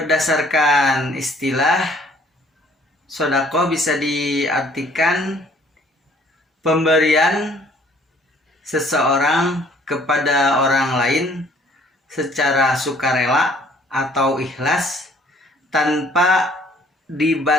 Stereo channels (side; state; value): both; normal; correlation 0.58